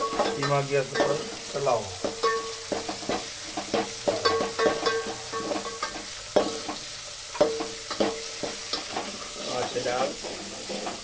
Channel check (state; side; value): identical; both; correlation 1.00